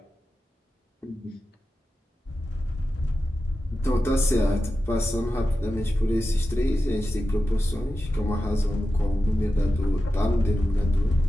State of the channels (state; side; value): normal; both; correlation 0.92